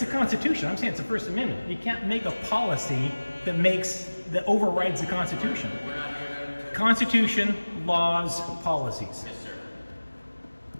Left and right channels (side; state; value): both; inverted; correlation -1.00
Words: Constitution. I'm saying it's the First Amendment. You can't make a policy that overrides the Constitution. We're not here to... Constitution, laws, policies. Yes, sir.